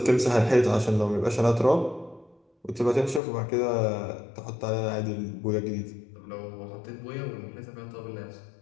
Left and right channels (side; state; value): right; drops out; at 3.2 s